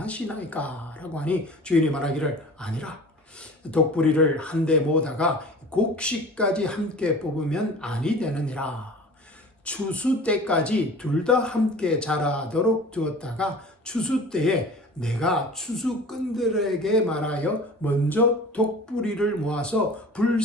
라고 하니 주인이 말하기를, 아니라 독뿌리를 한데 모으다가 곡식까지 함께 뽑으면 아니 되느니라. 추수 때까지 둘 다 함께 자라도록 두었다가 추수 때에 내가 추수꾼들에게 말하여 먼저 독뿌리를 모아서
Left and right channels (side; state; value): both; normal; correlation 0.41